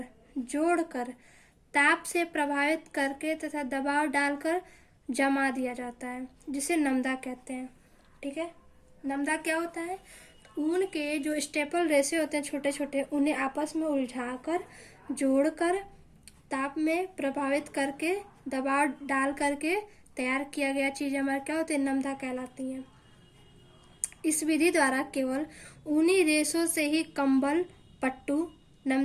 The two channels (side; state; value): both; identical; correlation 1.00